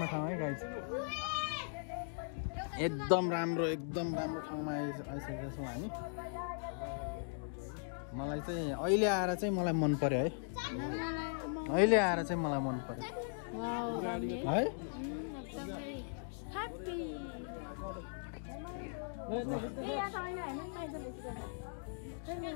ठाउँ है गाइस एकदम राम्रो ठाउँमा आइसकेका छौँ हामी मलाई चाहिँ अहिले आएर चाहिँ मलाई मन पर्यो है अहिले आएर चाहिँ मलाई मन पर्यो है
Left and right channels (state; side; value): silent; right; digital silence